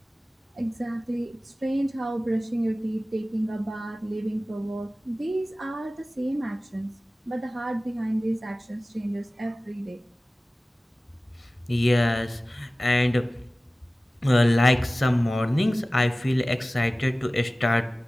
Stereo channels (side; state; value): both; normal; correlation 0.97